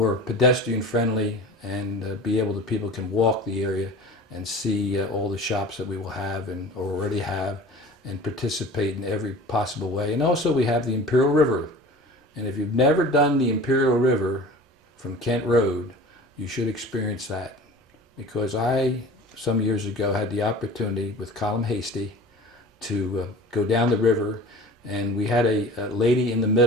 pedestrian friendly, and be able to, people can walk the area and see all the shops that we will have and already have, and participate in every possible way. And also, we have the Imperial River. And if you've never done the Imperial River from Kent Road, you should experience that. Because I, some years ago, had the opportunity with Colin Hasty to go down the river, and we had a lady in the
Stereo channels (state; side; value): normal; both; correlation 0.40